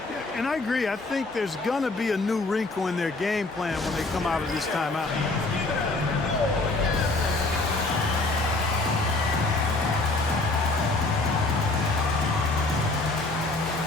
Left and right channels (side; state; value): right; quieter; 3.2 dB